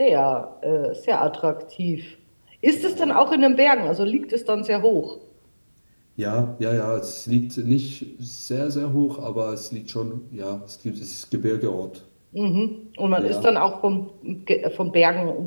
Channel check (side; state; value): both; inverted; correlation -1.00